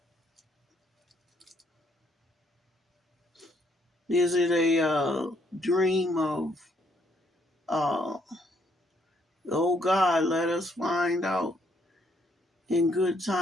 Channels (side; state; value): both; normal; correlation 0.70